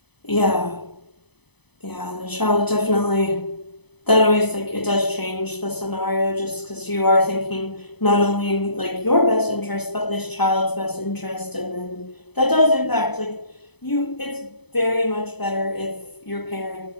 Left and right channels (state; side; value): late; right; 0.99 ms